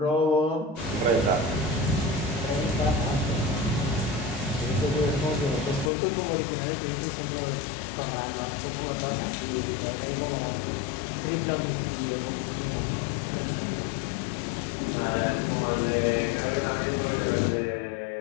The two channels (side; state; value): right; drops out; at 5.9 s